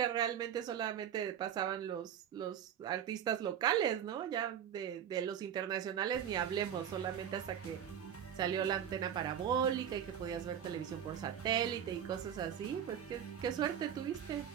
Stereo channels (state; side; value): quieter; left; 9.2 dB